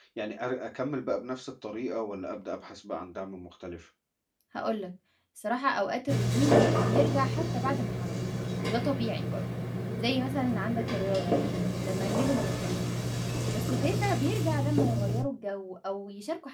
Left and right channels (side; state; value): both; identical; correlation 1.00